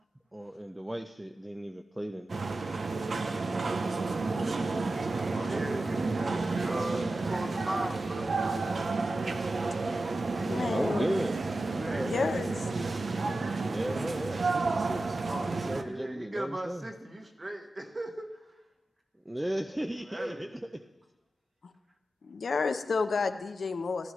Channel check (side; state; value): both; normal; correlation 0.93